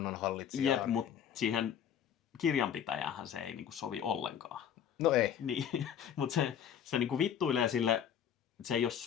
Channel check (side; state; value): right; quieter; 9.0 dB